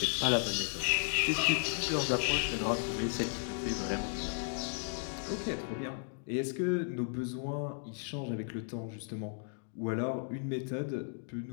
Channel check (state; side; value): silent; right; digital silence